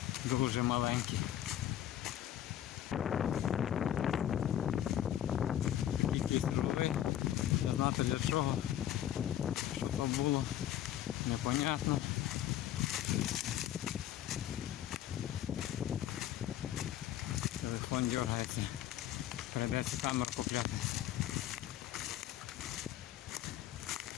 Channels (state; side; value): quieter; right; 11.7 dB